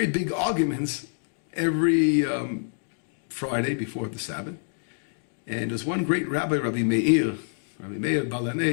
big arguments every Friday before the Sabbath. And there's one great rabbi, Rabbi Meir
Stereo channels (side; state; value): right; silent; digital silence